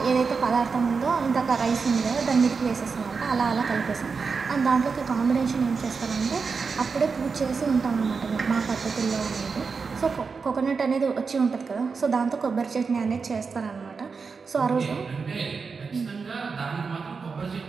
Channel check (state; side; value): quieter; left; 5.1 dB